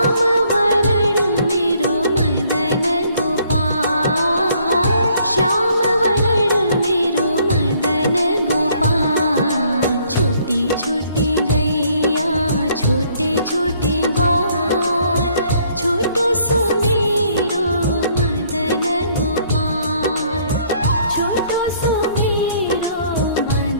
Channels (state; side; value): inverted; both; correlation -0.64